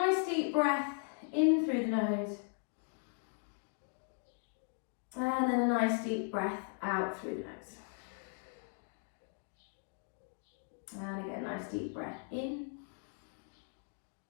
deep breath in through the nose. And then a nice deep breath out through the nose. And again, nice deep breath in.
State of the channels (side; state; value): right; silent; 52 dB below the other